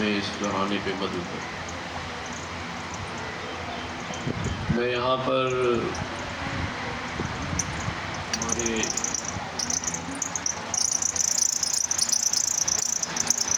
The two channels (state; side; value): identical; both; correlation 1.00